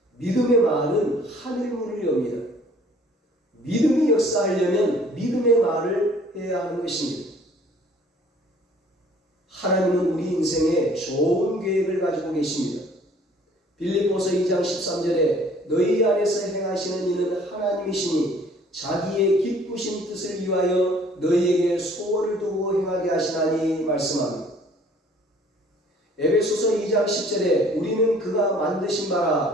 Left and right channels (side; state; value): both; normal; correlation 0.55